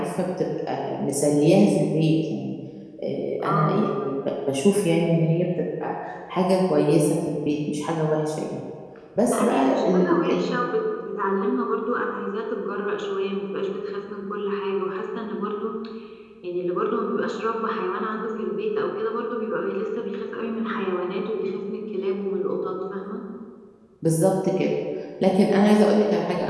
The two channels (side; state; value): both; identical; correlation 1.00